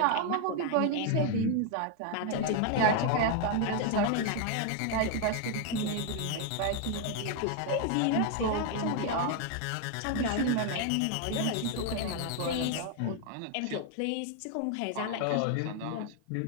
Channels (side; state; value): both; different; correlation 0.01